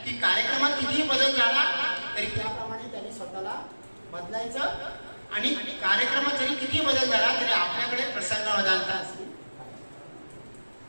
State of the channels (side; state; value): both; inverted; correlation -1.00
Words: की कार्यक्रमात कितीही बदल झाला तरी त्याप्रमाणे त्यांनी स्वतःला बदलायचं आणि कार्यक्रमात जरी किती बदल झाला तरी आपल्याकडे प्रसंगावधानता असली.